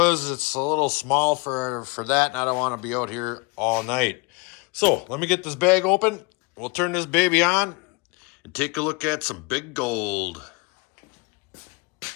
it's a little small for that, and I don't want to be out here all night. So let me get this bag open. We'll turn this baby on and take a look at some big gold.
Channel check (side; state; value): right; quieter; 27.5 dB